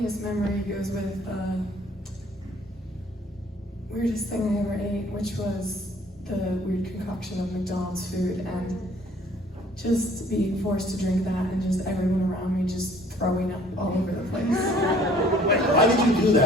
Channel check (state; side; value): normal; both; correlation 0.56